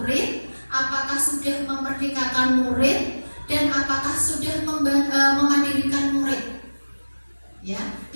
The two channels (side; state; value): both; inverted; correlation -1.00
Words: Apakah sudah memerdekakan murid? Dan apakah sudah memandirikan murid? Ya,